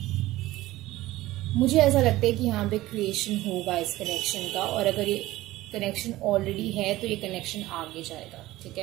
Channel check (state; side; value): quieter; left; 17.0 dB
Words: मुझे ऐसा लगता है कि यहाँ पे क्रिएशन होगा इस कनेक्शन का, और अगर ये कनेक्शन ऑलरेडी है तो ये कनेक्शन आगे जाएगा, ठीक